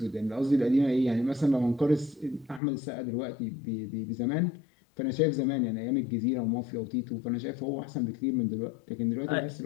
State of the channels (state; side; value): drops out; right; at 2.6 s